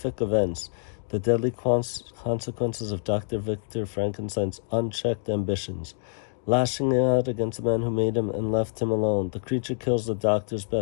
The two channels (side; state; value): right; silent; digital silence